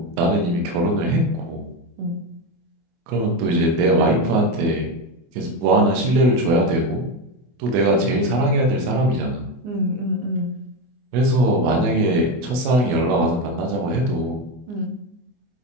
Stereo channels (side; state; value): left; late; 24 ms